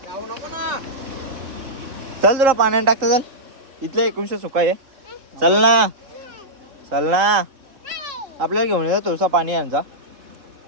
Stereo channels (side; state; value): left; late; 3.8 ms